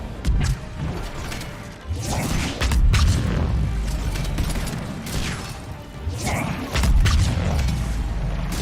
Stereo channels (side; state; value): both; identical; correlation 1.00